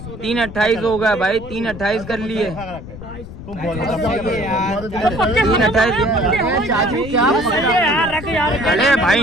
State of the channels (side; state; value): left; noise; rumble, 13 dB below the sound